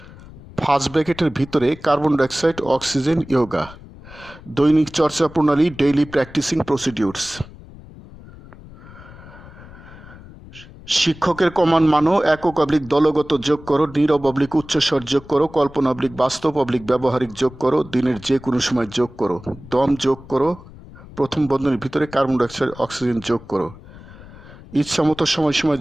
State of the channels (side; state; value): left; noise; rumble, 19 dB below the sound